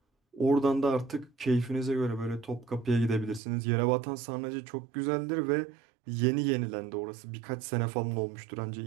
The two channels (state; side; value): drops out; left; at 3.4 s